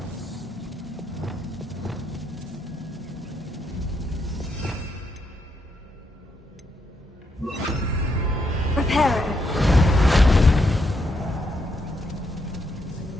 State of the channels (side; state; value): both; normal; correlation 0.78